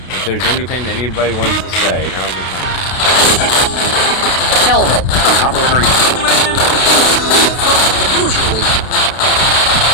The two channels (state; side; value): late; right; 32 ms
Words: If there's anything that anybody wants to say, now's the time.